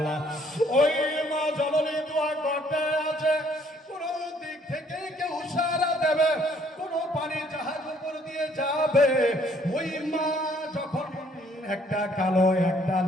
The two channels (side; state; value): both; normal; correlation 0.64